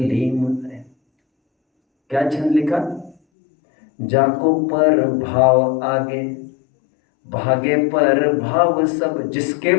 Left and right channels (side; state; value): right; drops out; at 3.2 s